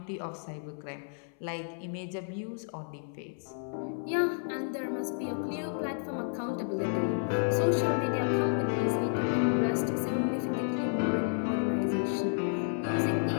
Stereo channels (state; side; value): silent; right; 56 dB below the other